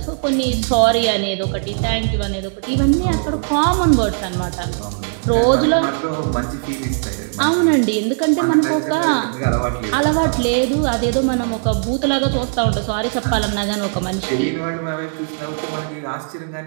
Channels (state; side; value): silent; left; digital silence